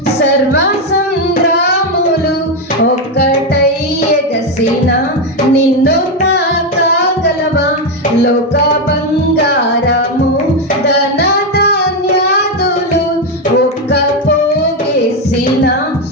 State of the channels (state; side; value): normal; both; correlation 0.07